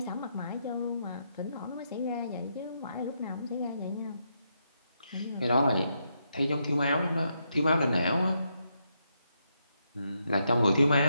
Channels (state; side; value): inverted; both; correlation -0.80